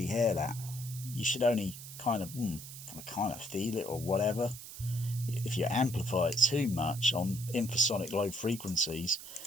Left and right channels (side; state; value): right; noise; hiss, 12 dB below the sound